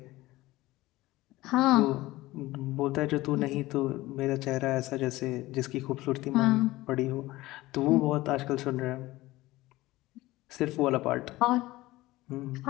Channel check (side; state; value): right; quieter; 18.4 dB